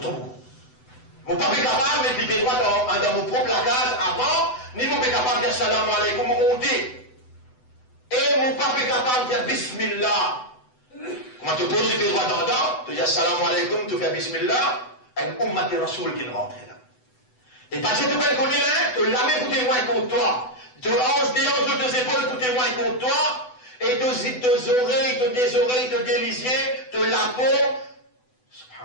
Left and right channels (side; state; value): right; late; 8.0 ms